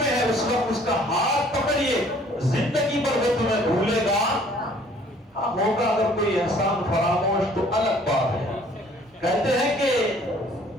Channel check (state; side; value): normal; both; correlation 0.57